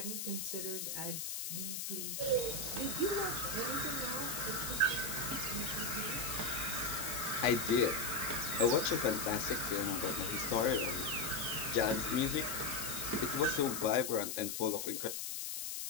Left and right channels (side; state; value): left; noise; hiss, 4 dB below the sound